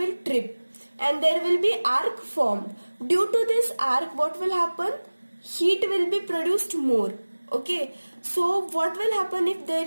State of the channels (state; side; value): inverted; both; correlation -1.00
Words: trip and there will be arc formed. Due to this arc, what will happen? heat will be produced more. Okay, so what will happen if there